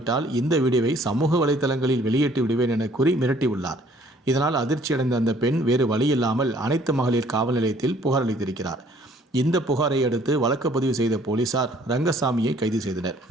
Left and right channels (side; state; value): both; normal; correlation 0.59